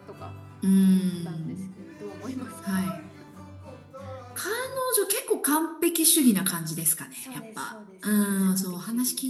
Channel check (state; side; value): identical; both; correlation 1.00